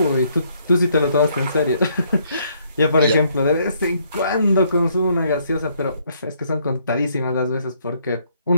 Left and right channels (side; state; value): both; inverted; correlation -0.68